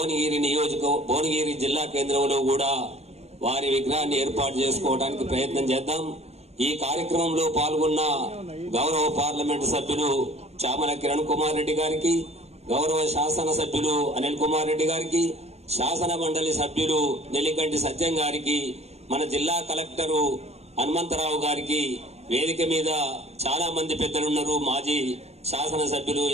జిల్లా కేంద్రంలో కూడా వారి విగ్రహాన్ని ఏర్పాటు చేసుకోవడానికి ప్రయత్నం చేద్దాం. ఈ కార్యక్రమంలో పాల్గొన్న గౌరవ పార్లమెంటు సభ్యులు చామల కిరణ్ కుమార్ రెడ్డి గారికి, గౌరవ శాసన సభ్యులు అనిల్ కుమార్ రెడ్డి గారికి, శాసన మండలి సభ్యులు నెల్లికంటి సత్యం గారికి, మన జిల్లా కలెక్టరు హనుమంతరావు గారికి, వేదిక మీద చాలా మంది పెద్దలున్నారు, మాజీ శాసన సభ్యులు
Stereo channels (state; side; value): late; left; 0.31 ms